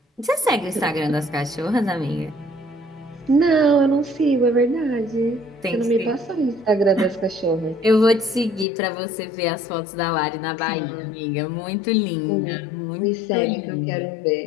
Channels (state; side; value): drops out; right; at 8.7 s